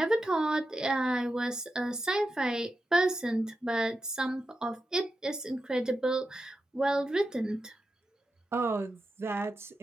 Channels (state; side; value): normal; both; correlation 0.89